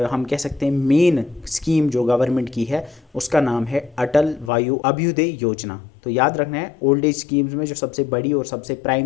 हम कह सकते हैं मेन स्कीम जो गवर्नमेंट की है उसका नाम है अटल वायु अभ्युदय योजना। तो याद रखना है ओल्ड एज स्कीम्स में जो सबसे बड़ी और सबसे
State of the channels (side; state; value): right; drops out; at 4.5 s